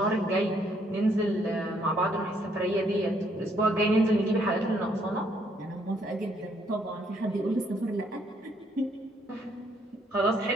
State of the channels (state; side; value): normal; both; correlation 0.69